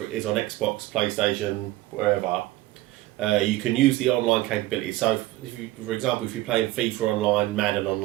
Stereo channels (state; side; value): quieter; left; 17.3 dB